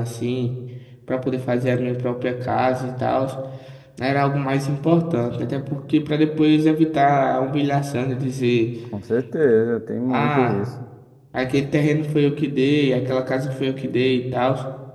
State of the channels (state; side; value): identical; both; correlation 1.00